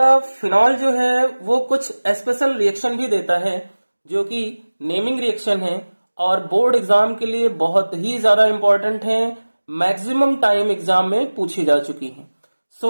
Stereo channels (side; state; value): both; inverted; correlation -1.00